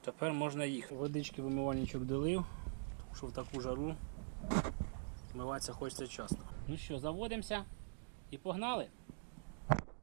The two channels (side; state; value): left; silent; digital silence